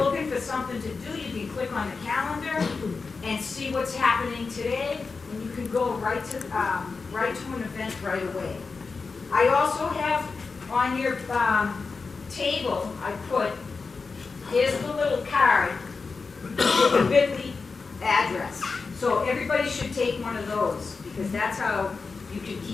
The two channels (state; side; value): quieter; right; 4.5 dB